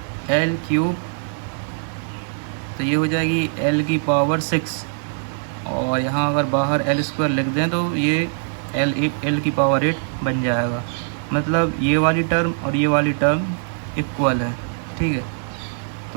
L cube, तो ये हो जाएगी L की पावर 6, और यहाँ अगर बाहर L स्क्वायर लिख दें तो ये L की पावर 8 बन जाएगा। मतलब ये वाली टर्म और ये वाली टर्म इक्वल है। ठीक है,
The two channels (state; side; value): silent; left; digital silence